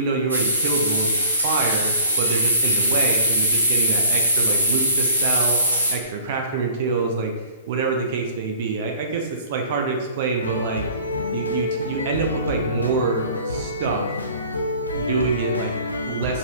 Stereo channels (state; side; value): inverted; both; correlation -0.48